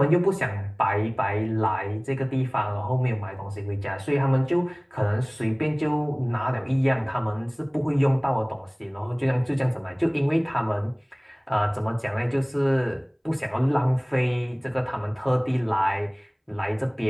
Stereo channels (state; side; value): identical; both; correlation 1.00